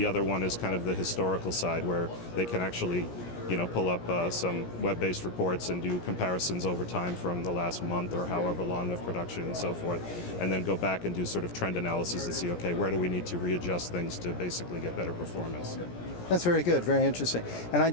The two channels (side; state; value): right; late; 17 ms